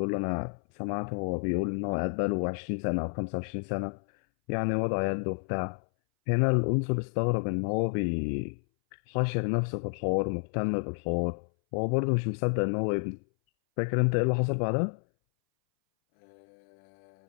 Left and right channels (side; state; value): right; silent; 58 dB below the other